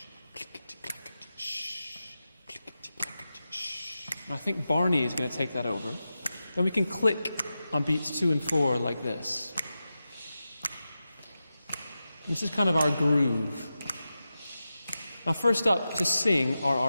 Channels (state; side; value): inverted; both; correlation -0.92